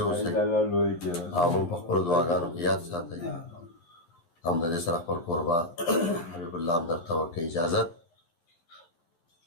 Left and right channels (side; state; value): right; late; 12 ms